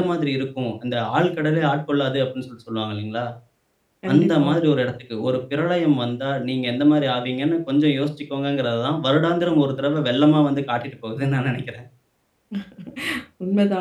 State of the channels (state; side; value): identical; both; correlation 1.00